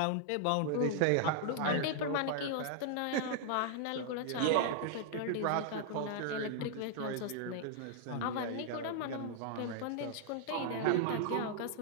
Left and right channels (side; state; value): both; different; correlation -0.01